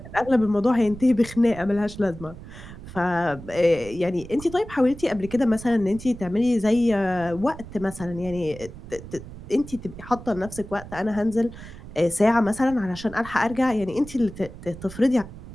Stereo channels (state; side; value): noise; right; rumble, 14 dB below the sound